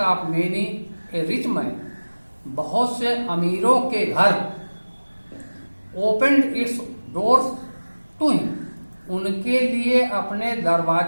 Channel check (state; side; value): inverted; both; correlation -1.00